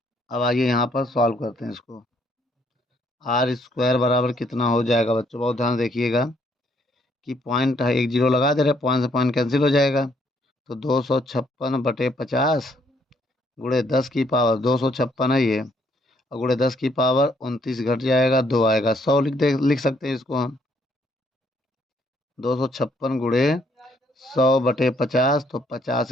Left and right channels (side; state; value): both; normal; correlation 0.69